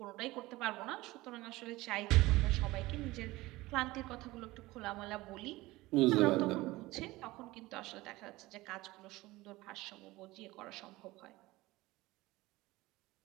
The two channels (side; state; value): left; quieter; 19.5 dB